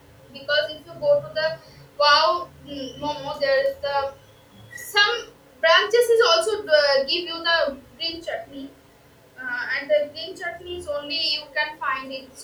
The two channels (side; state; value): both; identical; correlation 1.00